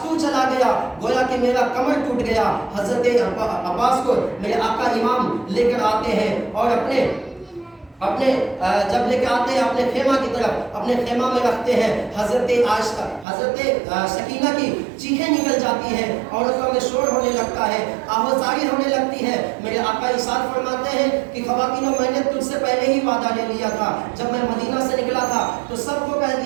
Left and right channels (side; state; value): left; drops out; at 13.2 s